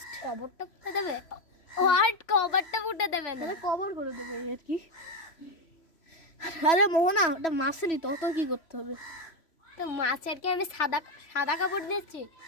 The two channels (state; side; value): late; right; 3.0 ms